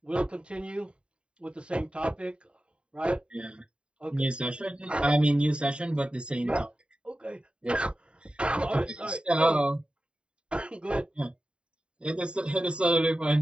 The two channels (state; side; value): late; left; 0.054 ms